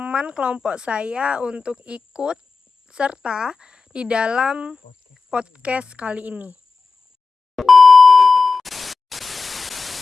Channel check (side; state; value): right; quieter; 4.2 dB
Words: kelompok saya untuk ikut serta di dalam podcast kali ini.